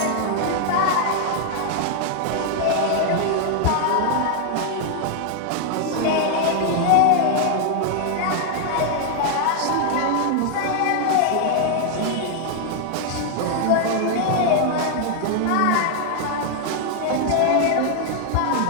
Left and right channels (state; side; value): different; both; correlation 0.00